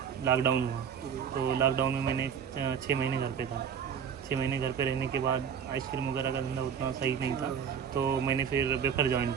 लॉकडाउन हुआ, तो लॉकडाउन में मैंने 6 महीने घर पे था। 6 महीने घर पे रहने के बाद आइसक्रीम वगैरह का धंधा उतना सही नहीं था, तो मैंने फिर वेफर ज्वाइन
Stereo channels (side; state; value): left; quieter; 7.6 dB